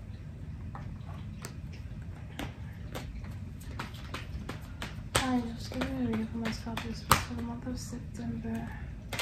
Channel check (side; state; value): both; identical; correlation 1.00